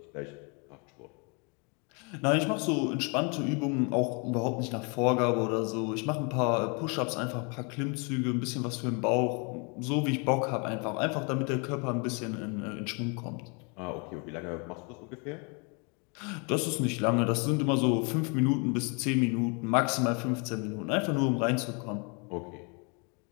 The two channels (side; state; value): right; quieter; 34.1 dB